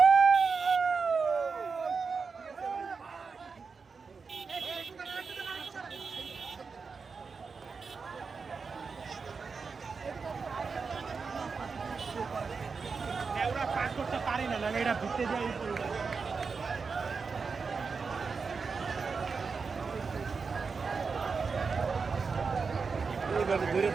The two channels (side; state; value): left; quieter; 5.0 dB